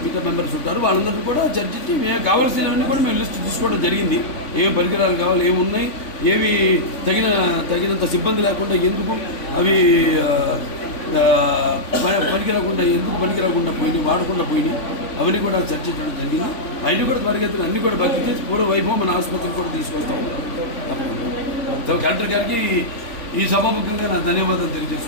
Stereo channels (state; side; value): late; right; 3.5 ms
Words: మిగతా మెంబర్స్ ఉంటారు. వాళ్ళందరికీ కూడా చర్చించి మేము కావాల్సినవన్నీ కూడా మేము లిస్ట్ తీసుకోవడం జరిగింది. ఏం పరికరాలు కావాలి, ఏమున్నాయి, ఏవి తగినంత సిబ్బంది లేకుండా ఎందుకు అవి పనికిరాకుండా ఎందుకు పనికిరాకుండా పోయినాయి, వాడకుండా పోయినాయి, అవన్నీ కూడా చర్చించడం జరిగింది. అవి కూడా త్వరగతిని అన్నీ కూడా భర్తీ చేసి పూర్వ వైభవం మన ఆసుపత్రికి కూడా తీసుకొస్తాం. కలెక్టర్ గారికి ఈ సభాముఖంగా నా ధన్యవాదాలు